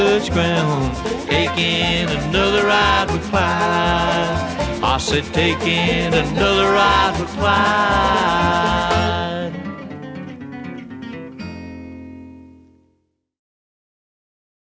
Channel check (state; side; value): identical; both; correlation 1.00